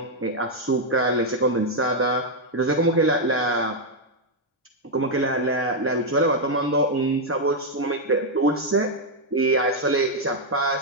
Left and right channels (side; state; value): both; normal; correlation -0.01